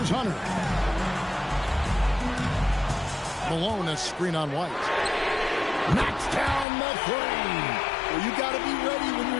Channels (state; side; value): drops out; right; at 6.7 s